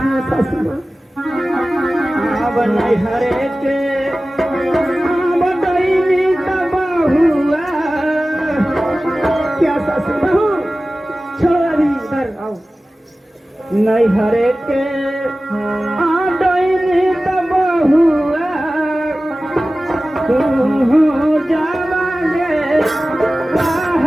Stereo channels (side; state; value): both; normal; correlation 0.96